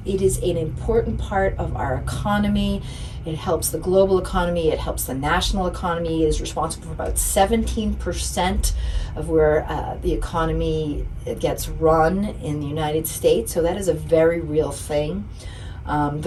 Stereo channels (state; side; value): identical; both; correlation 1.00